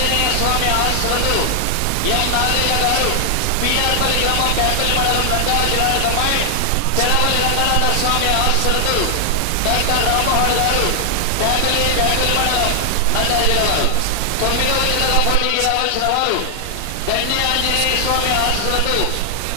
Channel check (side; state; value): both; different; correlation 0.00